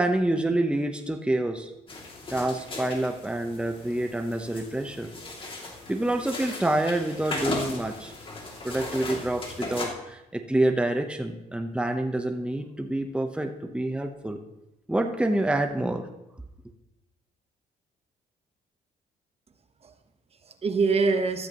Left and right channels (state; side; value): normal; both; correlation 0.85